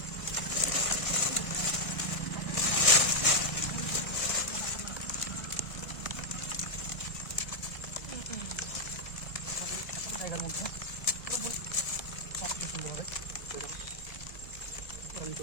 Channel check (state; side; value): late; right; 1.5 ms